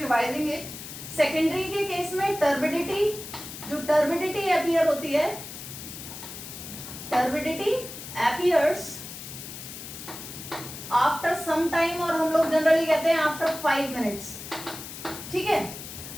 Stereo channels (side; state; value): left; noise; hiss, 11 dB below the sound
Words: it. Secondary के केस में टर्बिडिटी, जो टर्बिडिटी अपीयर होती है, turbidity appears after some time, और हम लोग जनरली कहते हैं आफ्टर 5 मिनट्स. ठीक है,